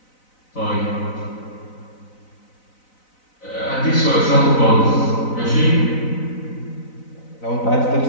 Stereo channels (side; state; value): right; late; 4.0 ms